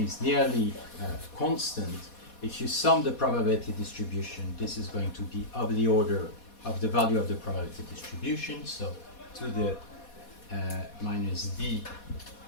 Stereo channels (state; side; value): late; right; 4.2 ms